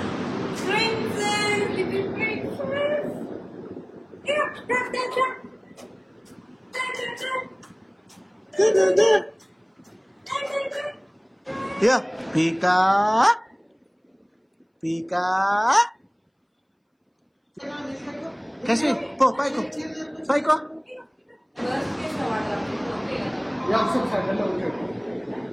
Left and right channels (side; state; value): both; identical; correlation 1.00